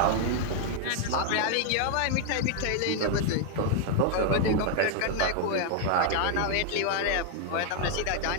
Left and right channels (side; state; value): both; different; correlation 0.00